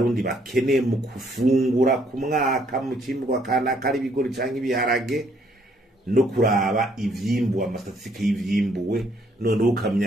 bakeneye mu kufungura ku mwaka mu cimbwa kana kari bigori canke ibiharage no kuraba ivyimbu amastatistike y'ivyimbuwe none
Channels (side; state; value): both; normal; correlation 0.67